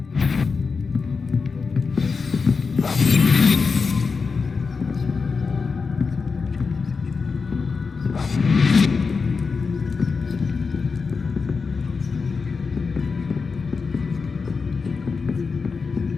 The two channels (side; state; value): right; quieter; 4.9 dB